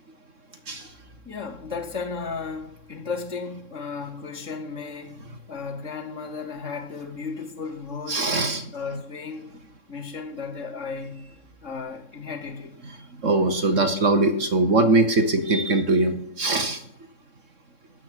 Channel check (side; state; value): left; late; 3.6 ms